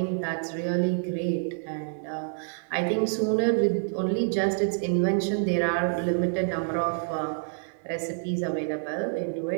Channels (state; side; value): silent; left; digital silence